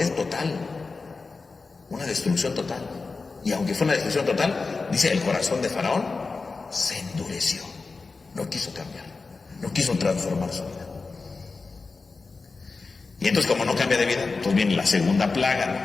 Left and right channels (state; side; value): quieter; right; 4.1 dB